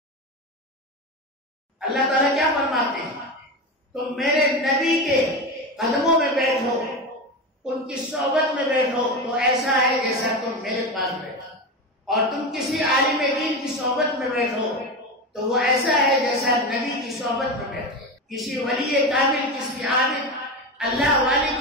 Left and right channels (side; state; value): both; normal; correlation 0.21